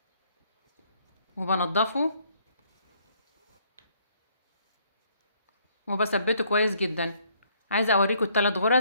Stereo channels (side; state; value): both; inverted; correlation -0.66